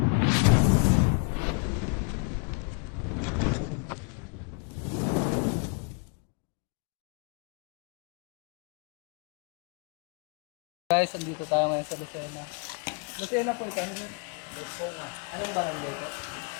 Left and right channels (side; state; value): right; quieter; 35.8 dB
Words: Guys, andito tayo ngayon sa Lucena. Lucena po ito. Lucena. Anong barangay po?